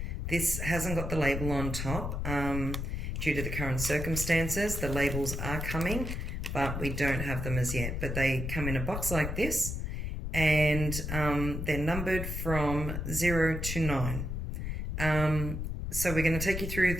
This hasn't got the label on top due to the current circumstances. The labels are coming, but we don't have them as yet. But they come in a box like this, and they're numbered from 0 to 9. So we're going to take you through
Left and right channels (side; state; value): left; noise; rumble, 3 dB below the sound